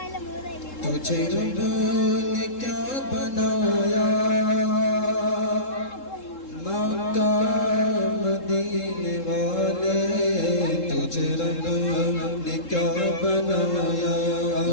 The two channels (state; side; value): late; right; 3.7 ms